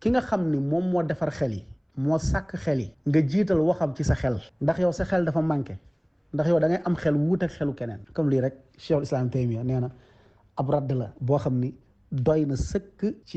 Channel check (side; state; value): both; identical; correlation 1.00